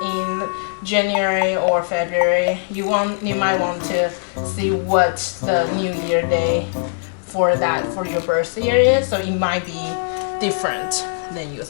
in January or February, you might want to see what the New Year day for your birthday year is. So it might be different than you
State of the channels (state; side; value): silent; right; 62 dB below the other